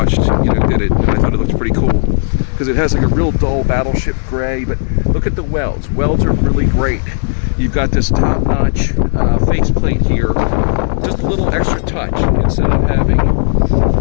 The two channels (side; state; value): right; silent; digital silence